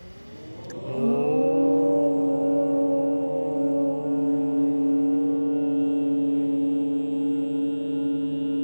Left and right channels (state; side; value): inverted; both; correlation -1.00